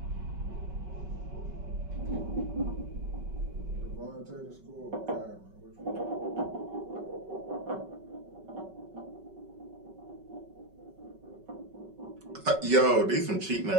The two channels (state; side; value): late; left; 5.3 ms